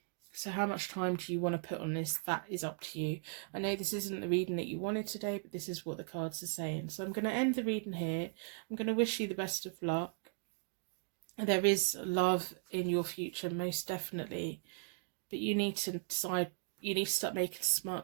So how much time do you want to put on this? That is up to you. I know this isn't the reading that you wanted today, but this is what the cards are saying. So I'm going to end the reading here. I'm going to wish you the best of luck. There is love in your future, most definitely. But you need to decide, you need to start making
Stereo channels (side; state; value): left; silent; 53 dB below the other